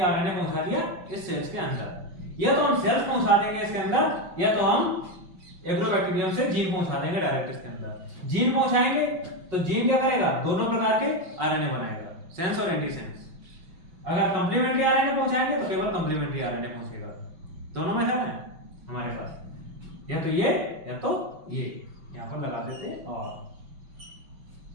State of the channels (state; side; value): late; left; 5.7 ms